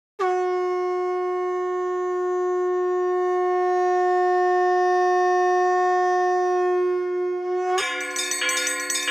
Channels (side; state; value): both; normal; correlation 0.98